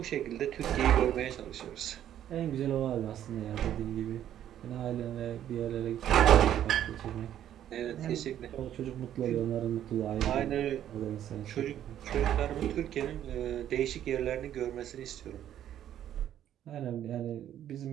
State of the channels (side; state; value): left; quieter; 11.0 dB